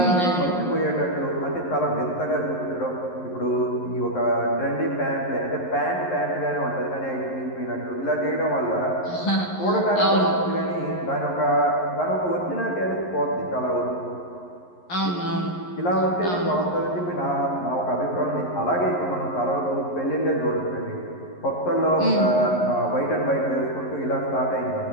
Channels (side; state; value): right; late; 11 ms